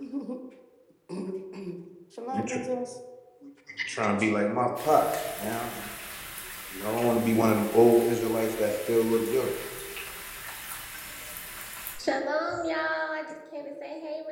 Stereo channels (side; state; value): both; identical; correlation 1.00